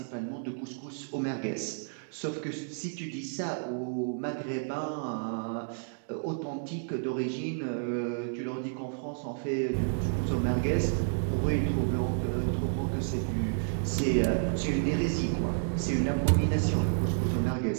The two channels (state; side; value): silent; left; digital silence